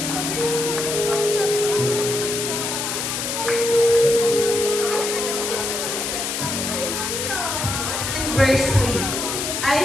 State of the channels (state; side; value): noise; left; hiss, 2 dB below the sound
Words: Verse 3, I